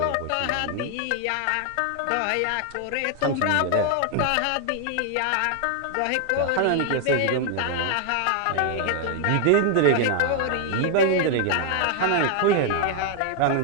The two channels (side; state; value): both; different; correlation 0.00